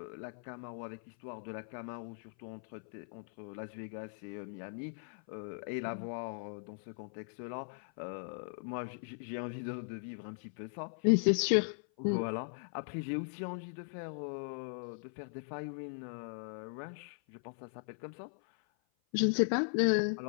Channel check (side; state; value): right; silent; 52 dB below the other